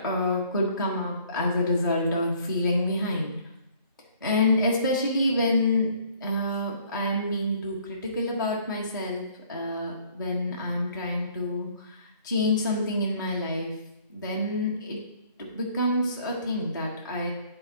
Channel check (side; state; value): both; inverted; correlation -0.58